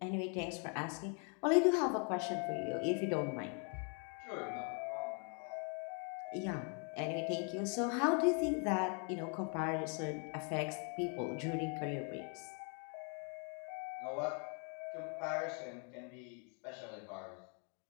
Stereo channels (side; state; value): right; quieter; 39.8 dB